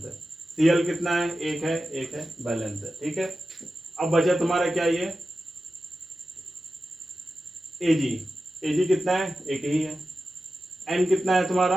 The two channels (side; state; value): both; normal; correlation 0.92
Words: है। Cl कितना है, 1 है, बैलेंस है, ठीक है। अब बचा तुम्हारा क्या, ये Ag कितना है, 1 ही है। N कितना है